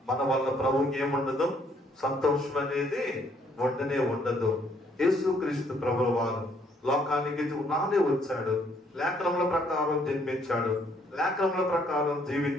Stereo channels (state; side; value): normal; both; correlation 0.67